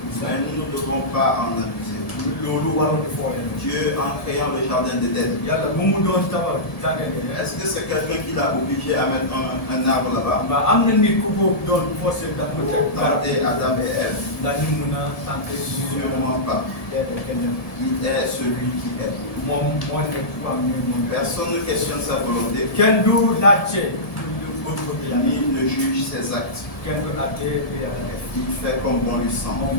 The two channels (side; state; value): right; late; 1.7 ms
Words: Christ. Mais nous ne devons pas en abuser. loolu waruñu fooyee. Dieu, en créant le jardin d'Éden, yàlla bu mu doon tabax jàngale. est-ce que c'est quelqu'un qui l'a obligé à mettre un arbre là-bas waaw am na nit ku ko doon forcé ndax mu pour teg garab tenter Adam et Ève? ndax ñu mun a tenter suñu Sûrement pas. kenn Il est celui qui est. moom moo nekk ku am ne moom. Personne ne questionne sa volonté, kenn du laajte bëgg-bëgg yàlla. ni ne juge ses actes. kenn du laajte lu yàlla def. Il fait comme bon lui semble. moom